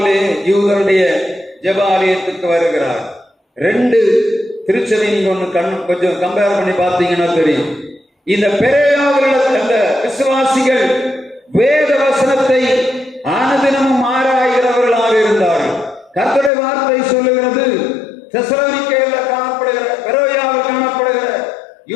யூதருடைய ஜெபாலயத்துக்கு வருகிறார். ரெண்டு திருச்சபை நீங்க ஒண்ணு கொஞ்சம் கம்பேர் பண்ணி பார்த்தீங்கன்னா தெரியும். இந்த பெரோயாவில் அந்த விசுவாசிகள் வேத வசனத்தை அனுதினமும் ஆராய்கிறவர்களாக இருந்தார்கள். கர்த்தருடைய வார்த்தை சொல்லுகிறது, தெசலோனிக்கேயில் காணப்படுகிற பெரோயாவில் காணப்படுகிற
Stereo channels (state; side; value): drops out; right; at 16.5 s